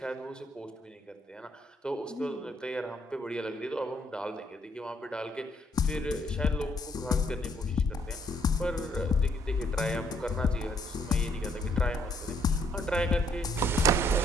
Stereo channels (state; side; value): normal; both; correlation 0.69